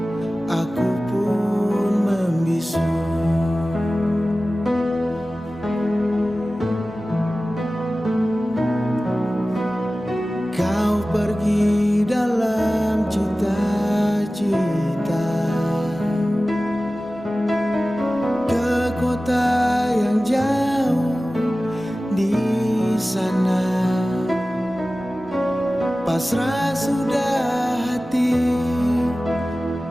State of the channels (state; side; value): normal; both; correlation 0.96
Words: aku pun membisu. Kau pergi dalam cita-cita ke kota yang jauh di sana. Pasrah sudah hati,